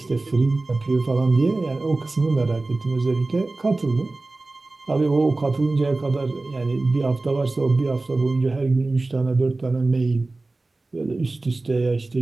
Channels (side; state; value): left; quieter; 3.2 dB